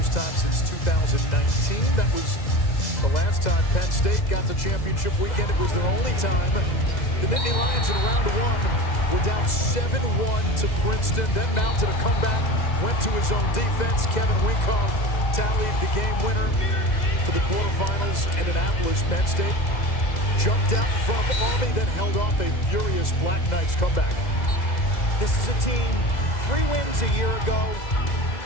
time since 2019. That was the last time Penn State got to championship weekend. It was their only time. The Nittany Lions in round one were down 7-1 to Princeton, then mounted a comeback, went to his own defense. Kevin Winkoff tallied the game winner for the quarterfinals in Annapolis. Penn State jumped out in front of Army, then held off a furious Black Knights comeback. This is a team, 3 wins a year ago.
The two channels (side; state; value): right; late; 2.0 ms